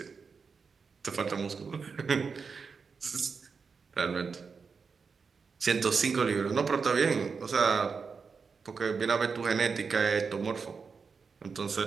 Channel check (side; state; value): left; quieter; 5.3 dB